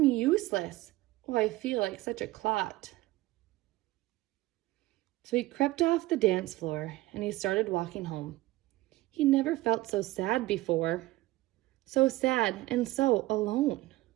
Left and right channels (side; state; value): left; quieter; 18.4 dB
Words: useless. Oh, I feel like such a clot." So he crept off the dance floor and he started walking home. He never felt so sad before. So sad and so alone.